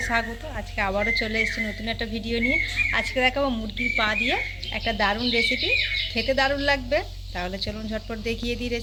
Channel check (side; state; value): both; identical; correlation 1.00